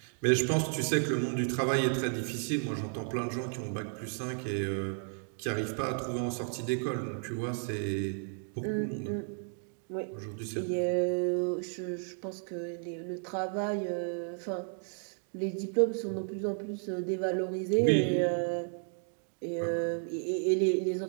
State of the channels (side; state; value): left; silent; 56 dB below the other